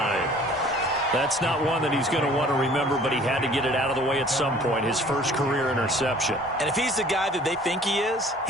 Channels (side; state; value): both; normal; correlation 0.52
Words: That's not one that he's going to want to remember, but he had to get it out of the way at some point, his first career interception. And if he's the guy that they think he is,